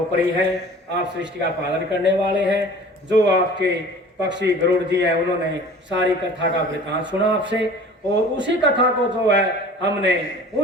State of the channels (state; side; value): normal; both; correlation 0.44